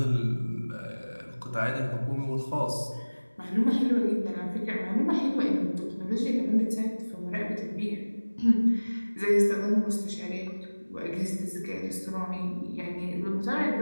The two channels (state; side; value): inverted; both; correlation -1.00